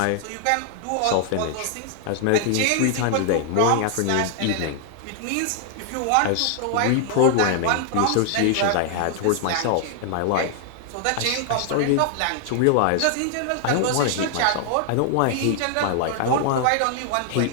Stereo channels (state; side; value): different; both; correlation 0.00